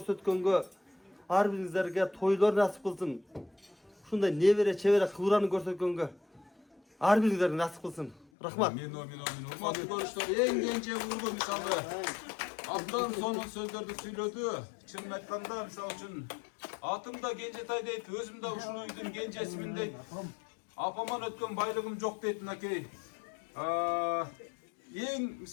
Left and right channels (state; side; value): drops out; right; at 8.2 s